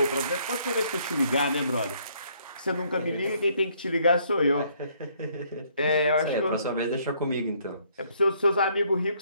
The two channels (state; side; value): inverted; both; correlation -0.66